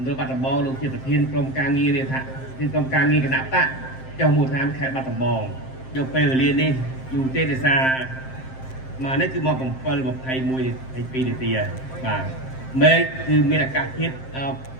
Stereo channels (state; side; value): late; right; 7.7 ms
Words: ្ឌលបាត់ដំបងលោកជាប្រធានក្រុមការងាររាជក្រុមការងារគណៈបកចុះមូលដ្ឋានខេត្តបាត់ដំបងយកពេលវេលានេះយូរទេដោយសារមកនេះគឺមក7:21 នាទីបាទមេឃគឺមានអាកាសធាតុ